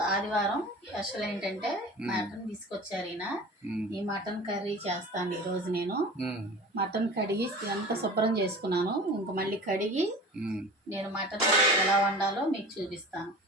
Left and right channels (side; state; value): both; normal; correlation 0.38